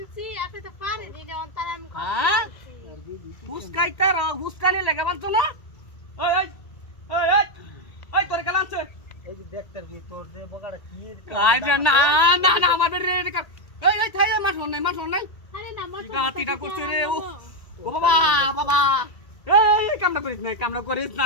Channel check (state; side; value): late; right; 1.8 ms